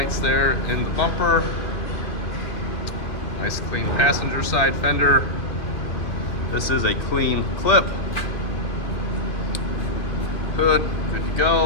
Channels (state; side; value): late; right; 2.3 ms